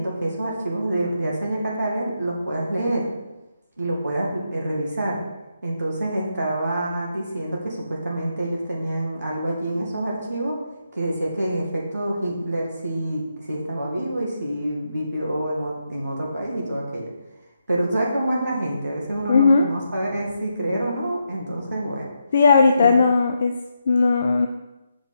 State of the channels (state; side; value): inverted; both; correlation -0.83